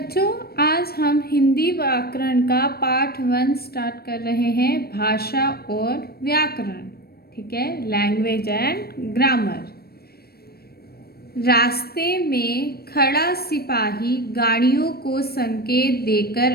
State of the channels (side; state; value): right; late; 0.45 ms